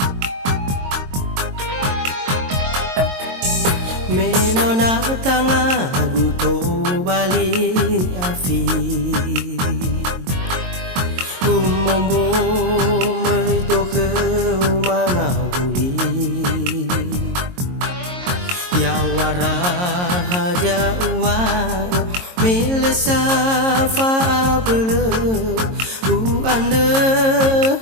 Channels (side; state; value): left; late; 22 ms